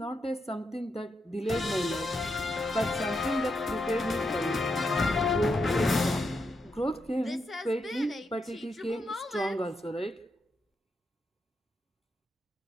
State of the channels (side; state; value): both; normal; correlation 0.83